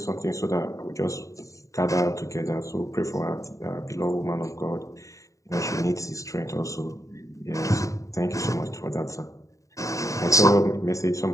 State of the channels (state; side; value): late; right; 0.16 ms